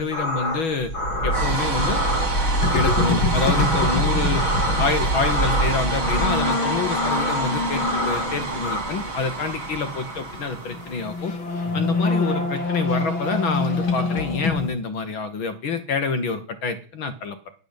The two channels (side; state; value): right; late; 6.2 ms